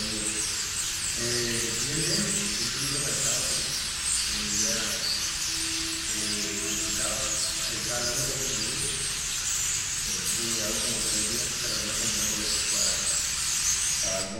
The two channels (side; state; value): both; identical; correlation 1.00